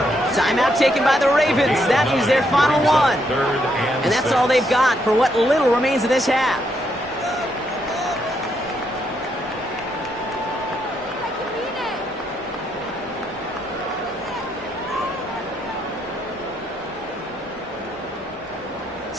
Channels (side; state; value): both; normal; correlation 0.76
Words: Timeout taken by the Ravens. That is their final one. And that's all they've got for what little remains of this half.